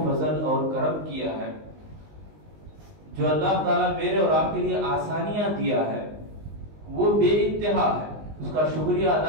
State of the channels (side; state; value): left; late; 19 ms